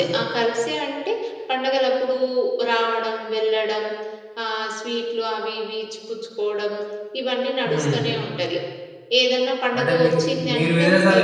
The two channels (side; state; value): both; identical; correlation 1.00